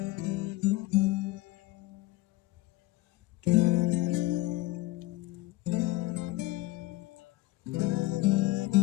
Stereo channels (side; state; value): right; quieter; 18.7 dB